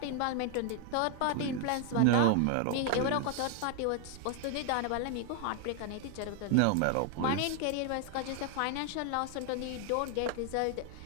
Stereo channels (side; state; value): both; different; correlation 0.00